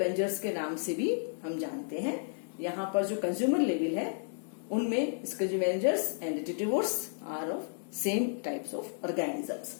के नाम से भी हम जानते हैं। यहाँ पर जो कंज्यूमर लेवल है उनमें scavengers and detritivores are of same types of organisms.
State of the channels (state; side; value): silent; right; digital silence